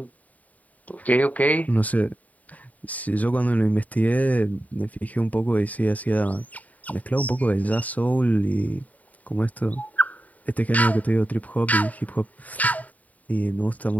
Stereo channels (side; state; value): right; late; 0.072 ms